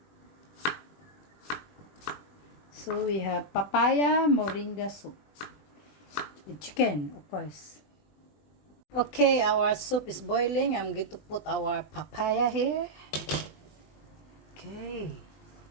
So we have papaya moringa soup with chicken, of course. Okay, our soup is boiling. I'm going to put our papaya here. Okay.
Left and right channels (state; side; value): late; right; 21 ms